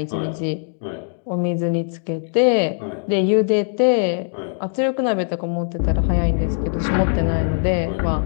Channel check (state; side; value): silent; right; digital silence